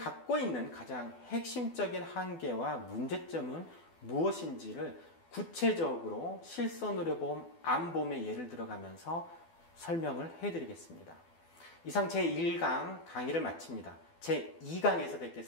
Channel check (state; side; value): late; right; 12 ms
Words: 있는 가장 핵심적인 한계와 문제점은 무엇인지를 구체적으로 실손의료보험, 암보험의 예를 들어가면서 설명을 해드리겠습니다. 이상 제1강 강의를 마칩니다. 제2강에서